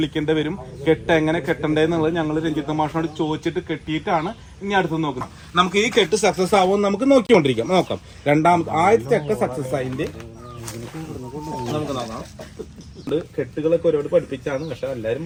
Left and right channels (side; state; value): both; identical; correlation 1.00